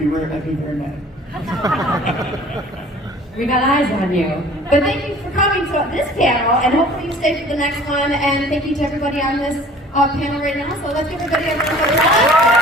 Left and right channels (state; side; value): normal; both; correlation 0.49